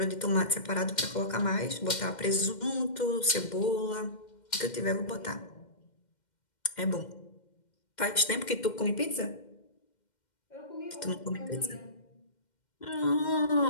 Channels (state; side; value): late; right; 2.1 ms